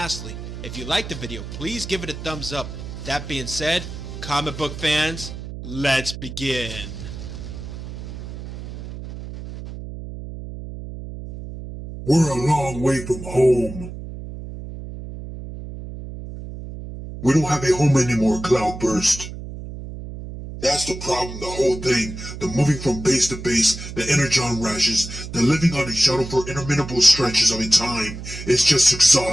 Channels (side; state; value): right; noise; hum, 10 dB below the sound